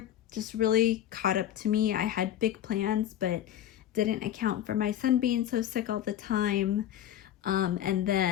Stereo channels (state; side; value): quieter; right; 11.4 dB